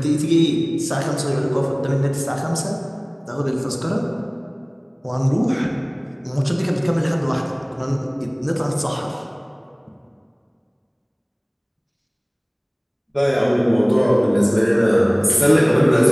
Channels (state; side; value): identical; both; correlation 1.00